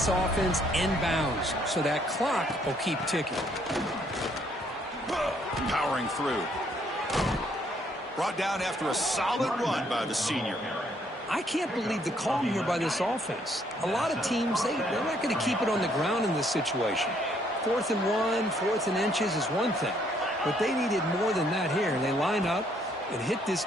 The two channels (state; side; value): normal; both; correlation 0.68